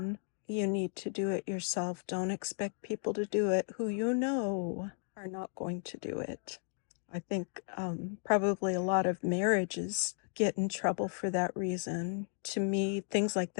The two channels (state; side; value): silent; right; digital silence